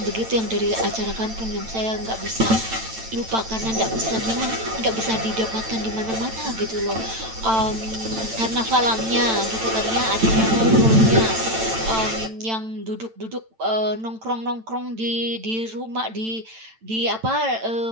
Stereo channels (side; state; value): left; late; 9.0 ms